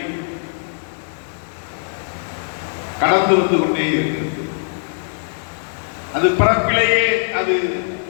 கடந்து வந்து கொண்டே இருக்கிறது. அது பிறப்பிலேயே அது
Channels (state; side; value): silent; right; digital silence